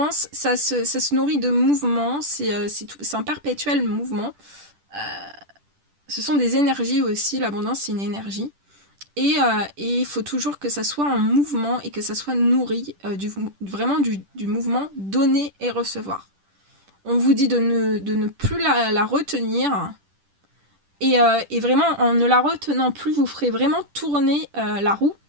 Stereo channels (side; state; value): left; late; 10 ms